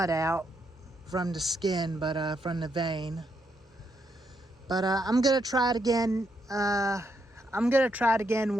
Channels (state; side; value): normal; both; correlation 0.79